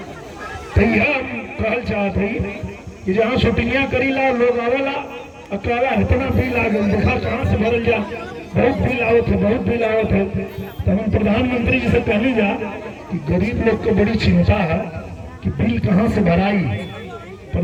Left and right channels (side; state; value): both; identical; correlation 1.00